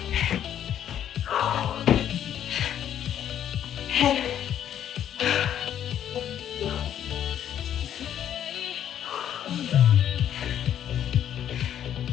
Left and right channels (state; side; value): quieter; right; 10.2 dB